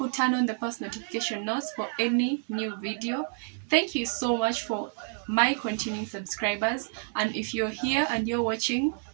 turn on the post notification notes for any new video. Thank you so much for my continuing subscribers. And if you're here and you're watching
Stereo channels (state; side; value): silent; left; 59 dB below the other